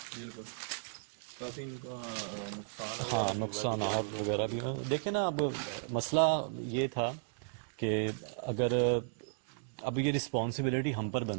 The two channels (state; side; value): silent; left; digital silence